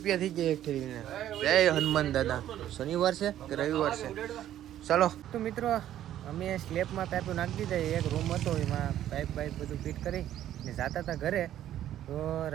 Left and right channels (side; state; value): left; quieter; 11.9 dB